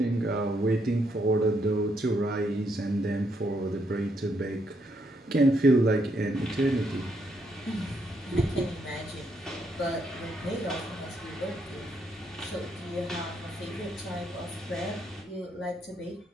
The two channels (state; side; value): normal; both; correlation 0.75